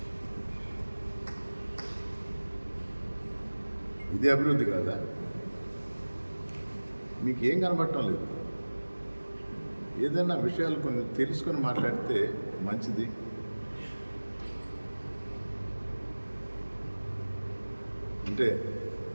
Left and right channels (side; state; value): both; inverted; correlation -1.00